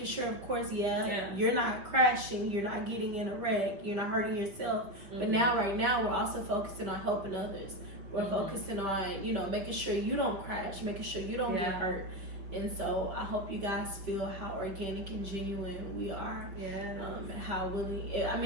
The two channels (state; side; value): late; left; 5.8 ms